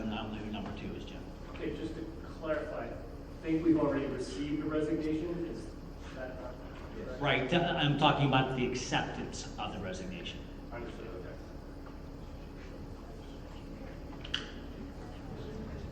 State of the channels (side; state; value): both; identical; correlation 1.00